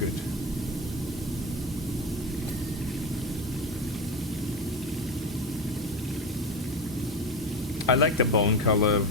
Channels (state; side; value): normal; both; correlation 0.21